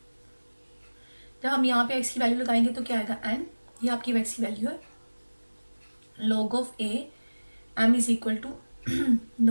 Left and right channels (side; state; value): both; inverted; correlation -1.00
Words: जब हम यहाँ पे एक्स की वैल्यू लगाएंगे तो क्या आएगा, एन, ये आपकी एक्स की वैल्यू है। log of A M is equal to